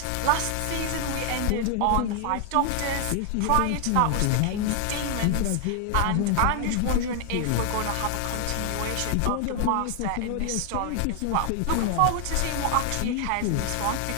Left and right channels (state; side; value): different; both; correlation 0.00